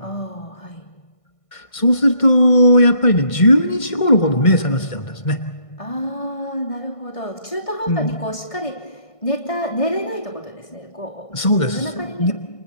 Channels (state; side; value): late; right; 1.5 ms